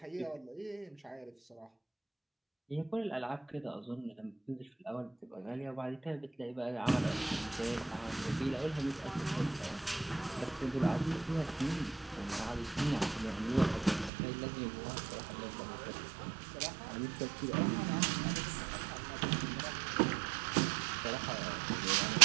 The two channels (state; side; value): drops out; left; at 14.1 s